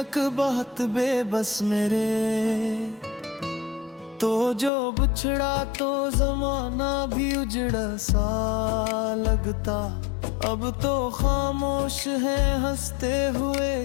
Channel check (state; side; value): drops out; right; at 4.7 s